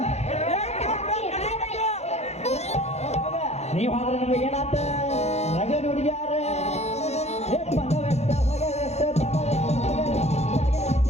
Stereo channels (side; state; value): right; late; 0.31 ms